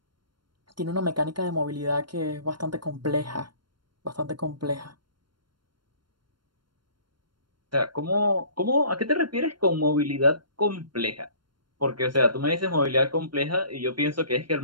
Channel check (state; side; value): late; left; 0.72 ms